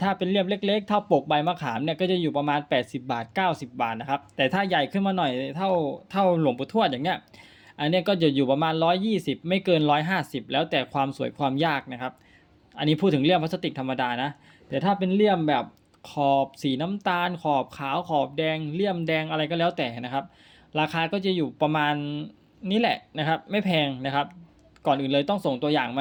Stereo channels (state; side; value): identical; both; correlation 1.00